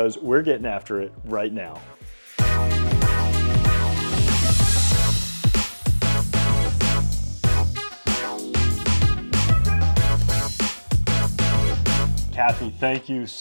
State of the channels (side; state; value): both; inverted; correlation -1.00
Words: we're getting after it right now. Kathy, thank you